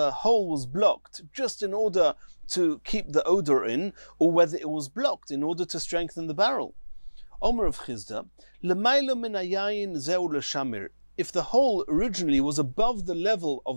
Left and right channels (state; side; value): inverted; both; correlation -1.00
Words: hole was blocked just in order to keep the odor in, or whether it was blocked in order to strengthen the barrel? Omer of Chizda, L'maylo min hayayin zeu l'shamir. If the hole originally was above the level